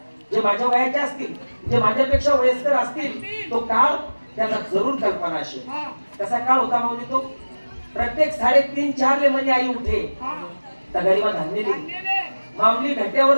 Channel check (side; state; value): both; inverted; correlation -1.00